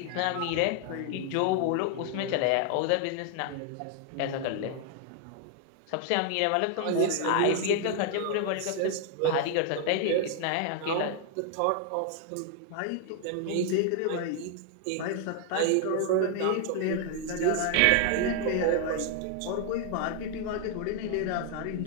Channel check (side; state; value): both; different; correlation 0.00